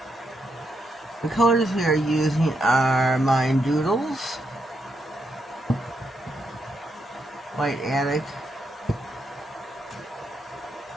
The colors we are using are Mine Doodles, White Attic,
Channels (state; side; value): normal; both; correlation 0.81